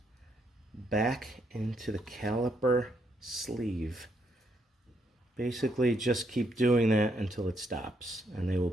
back into the caliper sleeve. Basically, just keep doing that until it stops, and they will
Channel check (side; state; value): both; normal; correlation 0.75